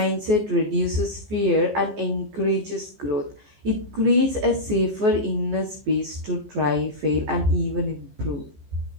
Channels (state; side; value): late; left; 15 ms